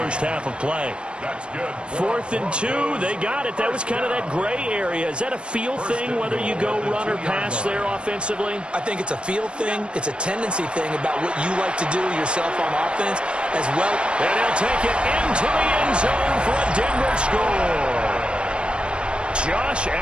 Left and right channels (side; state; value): left; late; 0.056 ms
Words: half of play. That's good. 4th and 2. They got it. That was kind of that gray area. Is that a feel thing, whether you go run or pass there offensively? I think it's a feel thing. It's a tendency thing about what you like to do yourself on offense as well. And he'll take it into the end zone for a Denver score. Josh